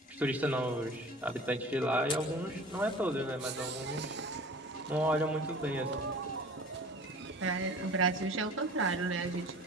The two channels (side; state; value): both; normal; correlation 0.42